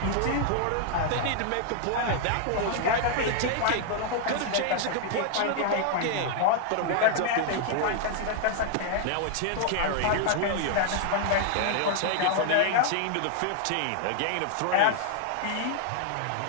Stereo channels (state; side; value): different; both; correlation 0.00